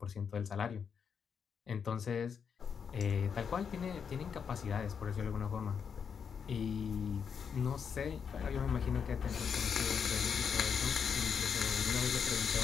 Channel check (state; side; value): quieter; right; 6.8 dB